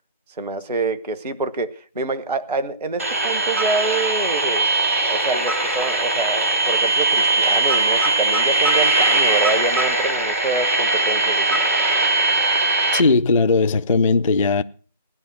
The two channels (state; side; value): inverted; both; correlation -0.33